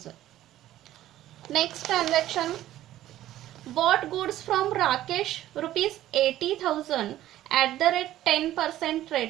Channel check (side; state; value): left; quieter; 13.7 dB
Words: Next transaction bought goods from Rakesh rupees 80,000 at the rate 10%